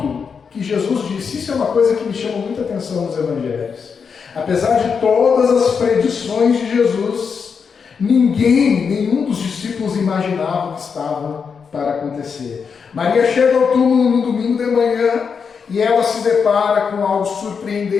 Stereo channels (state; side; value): quieter; right; 6.0 dB